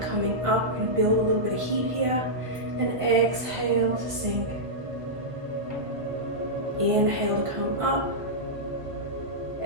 up, and build a little bit of heat here. And exhale to sink. Inhale to come up.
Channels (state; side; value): late; left; 1.7 ms